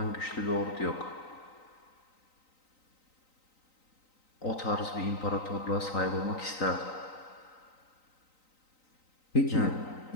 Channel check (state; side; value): late; right; 3.9 ms